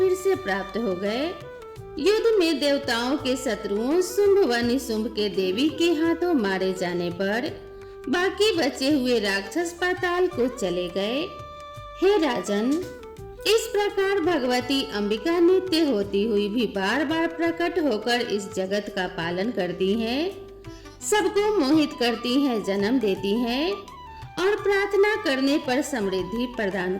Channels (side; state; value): both; identical; correlation 1.00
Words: से प्राप्त हो गए। युद्ध में देवताओं के शत्रुओं शुंभ व निशुंभ के देवी के हाथों मारे जाने पर बाकी बचे हुए राक्षस पाताल को चले गए। हे राजन, इस प्रकार भगवती अंबिका नित्य होती हुई भी बार बार प्रकट होकर इस जगत का पालन करती हैं, सबको मोहित करती हैं, जन्म देती हैं और प्रार्थना करने पर समृद्धि प्रदान